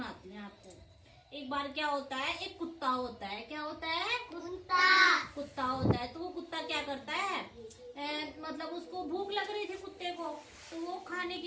हूँ आपको। एक बार क्या होता है, एक कुत्ता होता है। क्या होता है? कुत्ता होता है। तो वो कुत्ता क्या करता है, मतलब उसको भूख लग रही थी कुत्ते को, तो वो खाने की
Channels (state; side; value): identical; both; correlation 1.00